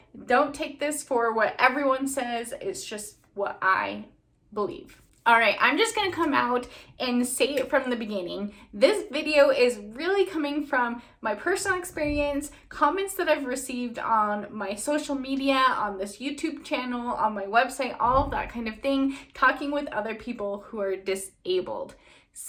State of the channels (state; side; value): identical; both; correlation 1.00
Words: don't take this for what everyone says. It's just what I believe. All right, I'm just gonna come out and say it from the beginning. This video is really coming from my personal experience, comments that I've received on my social media, on this YouTube channel, on my website, all of that kind of thing, talking with other people who are disabled.